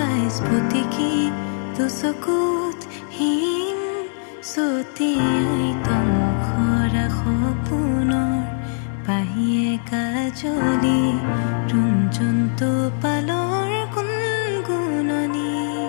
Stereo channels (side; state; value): right; silent; digital silence